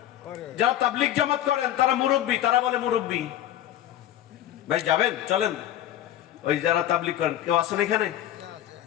যারা তাবলিগ জামাত করেন তারা মুরব্বী, তারা বলে মুরব্বী। ভাই যাবেন, চলেন। ওই যারা তাবলিগ করেন কেউ আছেন এখানে?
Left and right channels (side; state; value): right; quieter; 12.2 dB